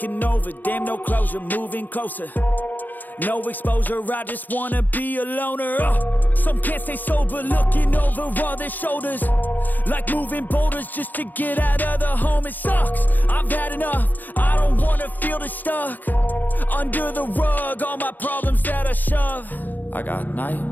over, damn, no closure, moving closer. No exposure, I just wanna be a loner. Some can't stay sober, looking over all their shoulders, like moving boulders just to get out of the home. It sucks, I've had enough, I don't wanna feel the stuck under the rug, all my problems that I shove. I got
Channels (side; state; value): right; late; 0.085 ms